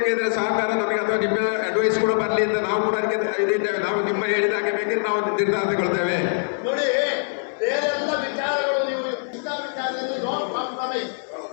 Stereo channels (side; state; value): right; silent; 63 dB below the other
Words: ಸಹಕಾರ ನಮಗೆ ಅಥವಾ ನಿಮ್ಮ ಅಡ್ವೈಸ್ ಕೂಡ ಬರಲಿ ಅಂತ ನಾವು ಕೂಡ ಅದಕ್ಕೆ ಇದಿದ್ದೇವೆ. ನಾವು ನಿಮ್ಮ ಹೇಳಿದಾಗೆ ಬೇಕಿದ್ರೆ ನಾವು ನಿರ್ಧಾರ ತಗೊಳ್ತೇವೆ. ನೋಡಿ ಬೇರೆಲ್ಲ ವಿಚಾರಗಳು ನೀವು ಇಂಥ ವಿಚಾರದಲ್ಲಿ